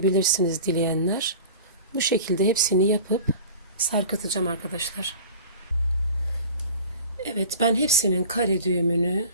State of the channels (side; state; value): both; inverted; correlation -0.39